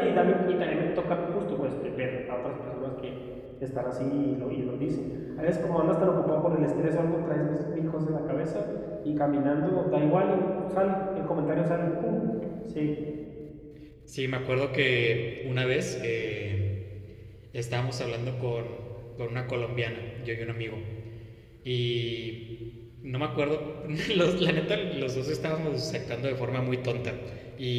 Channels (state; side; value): identical; both; correlation 1.00